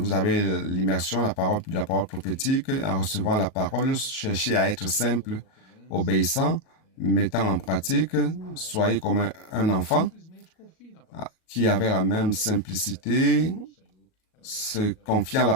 avez l'immersion, la parole prophétique. En recevant la parole, cherchez à être simple, obéissant, mettant en pratique. Soyez comme un enfant qui avait la même simplicité se confier en la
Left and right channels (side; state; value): right; late; 38 ms